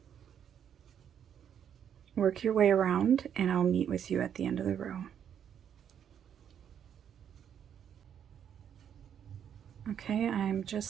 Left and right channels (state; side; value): quieter; left; 8.8 dB